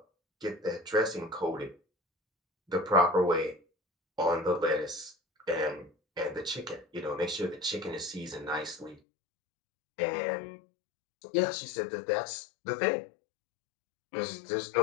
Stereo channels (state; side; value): drops out; right; at 9.0 s